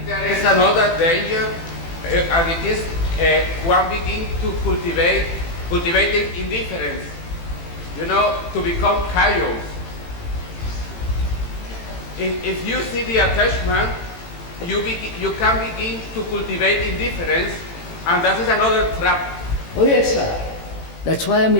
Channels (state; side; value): late; right; 18 ms